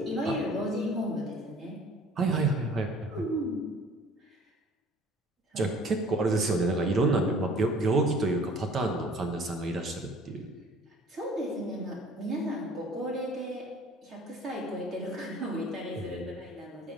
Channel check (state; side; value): normal; both; correlation 0.51